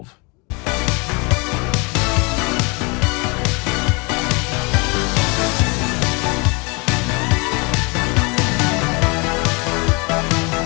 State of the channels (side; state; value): right; quieter; 29.8 dB